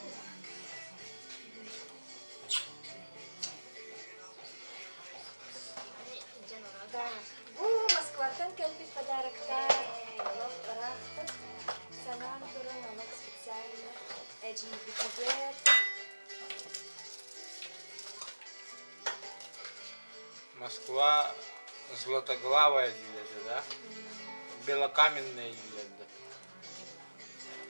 Да. Москва-тан кельпит подарок. Санан туран намак специально. Эджи бикубет. Москва Златоглавая диледі, да? Белокаменная диледі.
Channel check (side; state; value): both; inverted; correlation -1.00